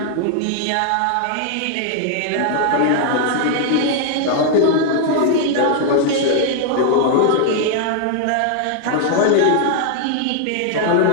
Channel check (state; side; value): different; both; correlation 0.00